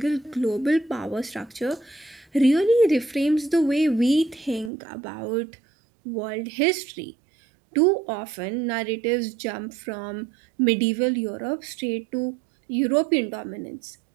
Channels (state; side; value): drops out; left; at 4.7 s